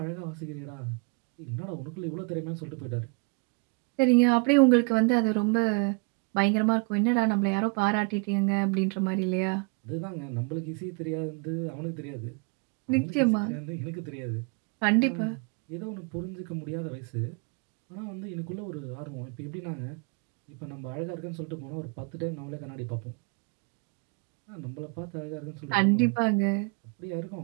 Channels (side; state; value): left; quieter; 33.3 dB